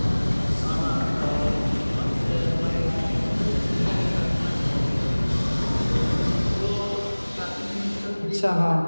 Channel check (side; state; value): both; inverted; correlation -1.00